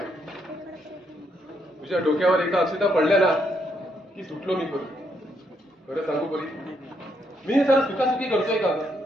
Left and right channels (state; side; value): normal; both; correlation 0.76